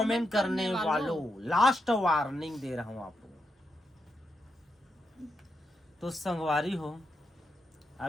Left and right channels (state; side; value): normal; both; correlation 0.84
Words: करने वालों, लास्ट वार्निंग दे रहा हूं आपको। तो संगवारी हो,